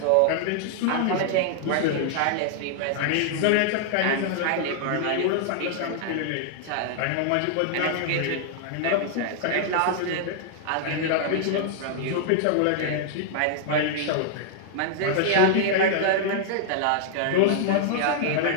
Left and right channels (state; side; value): different; both; correlation -0.01